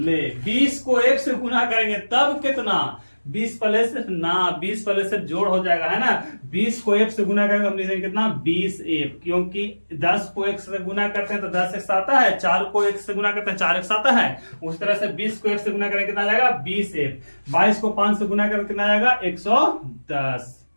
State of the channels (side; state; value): both; inverted; correlation -1.00